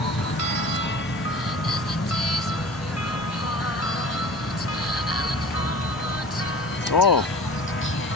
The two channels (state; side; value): normal; both; correlation 0.40